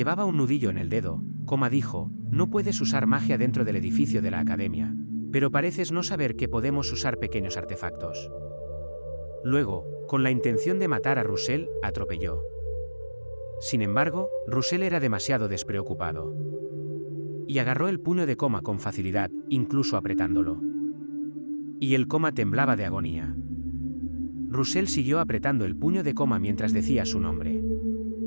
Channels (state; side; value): inverted; both; correlation -1.00